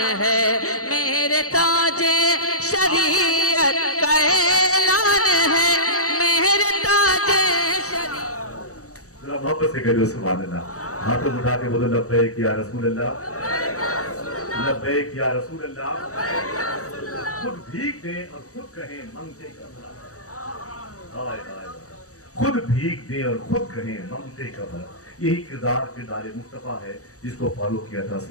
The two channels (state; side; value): late; right; 0.65 ms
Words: ہے میرے تاج شریعت کا اعلان ہے میرے تاج شریعت. ذرا محبت سے کہو سبحان اللہ. ہاتھوں اٹھا کے بولو لبیک یا رسول اللہ، لبیک یا رسول اللہ. خود بھیک دیں اور خود کہیں منگتے کا بھلا. ہائے ہائے، خود بھیک دیں اور خود کہیں منگتے کا بھلا. یہی کردار مصطفیٰ ہے جس کو فالو کیا تھا